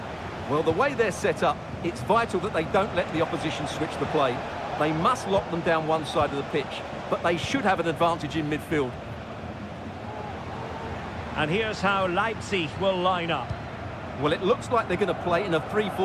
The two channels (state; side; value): identical; both; correlation 1.00